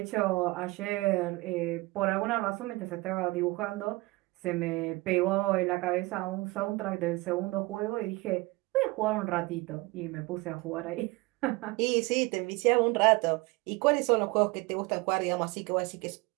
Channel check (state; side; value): quieter; left; 22.8 dB